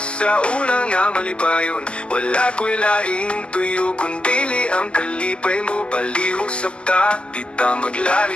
sa unang nga malipayon Wala ko'y laing tuyo kundili ang kalipay mo Palihog sabta, di ta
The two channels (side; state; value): right; late; 0.058 ms